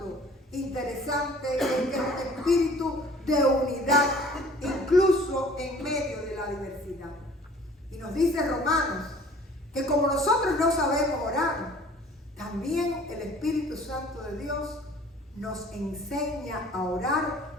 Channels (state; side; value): normal; both; correlation 0.51